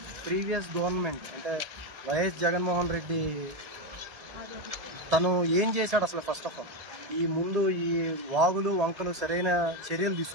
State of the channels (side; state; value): left; late; 1.8 ms